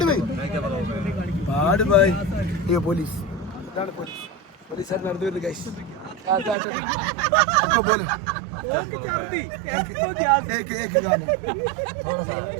भाई. ये പോലീസ് പോലീസുകാർ നടന്നു വരുന്നു ഗൈസ്. बोलो एक गाना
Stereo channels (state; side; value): drops out; left; at 6.6 s